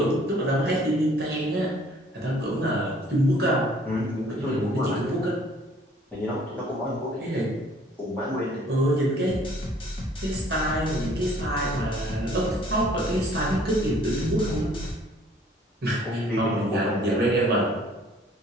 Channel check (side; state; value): both; normal; correlation 0.57